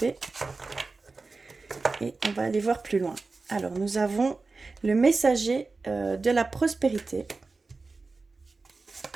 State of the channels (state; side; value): quieter; left; 3.9 dB